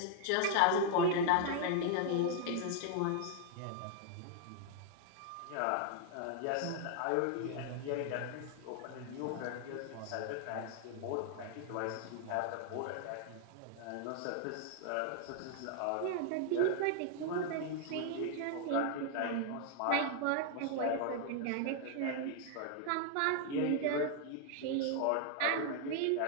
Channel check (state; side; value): different; both; correlation 0.00